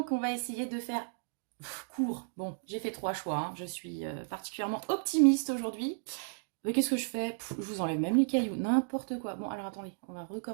on va essayer de faire court. Bon, j'ai fait 3 choix. Hein. Je suis particulièrement optimiste aujourd'hui. Mais qu'est-ce que je fais? Je vous enlève même les cailloux, n'importe quoi. Bon, alors attendez, on va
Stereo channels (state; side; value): silent; left; digital silence